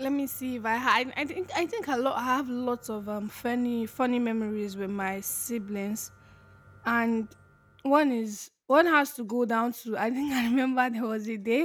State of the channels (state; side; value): identical; both; correlation 1.00